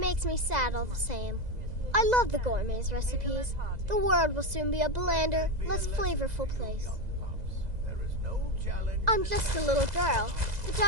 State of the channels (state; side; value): late; left; 2.0 ms